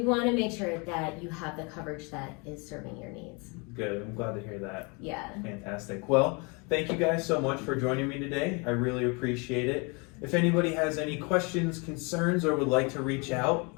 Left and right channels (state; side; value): quieter; right; 31.1 dB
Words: to make sure that you have the coverage that is serving your needs. Good. I'm glad to hear that. Yeah. Fantastic. Well, thank you guys so much for joining me today. I really appreciate it. If anybody has any questions, concerns, or would like to reach out,